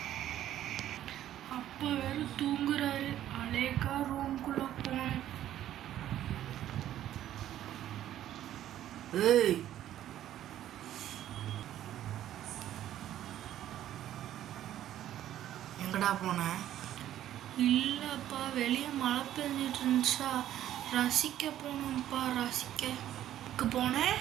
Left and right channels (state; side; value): quieter; left; 12.2 dB